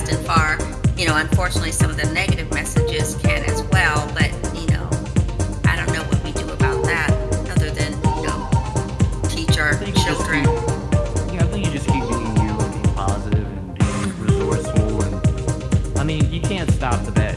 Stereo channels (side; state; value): both; identical; correlation 1.00